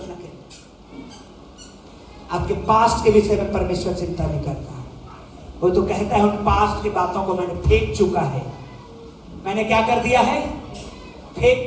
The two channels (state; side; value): identical; both; correlation 1.00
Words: के। आपके पास्ट के विषय में परमेश्वर चिंता नहीं करता। वो तो कहता है उन पास्ट की बातों को मैंने फेंक चुका है। मैंने क्या कर दिया है?